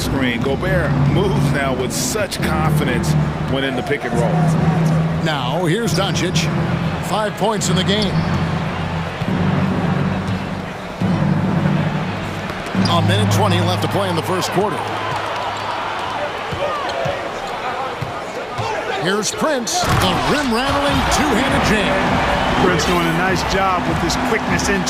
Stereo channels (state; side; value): identical; both; correlation 1.00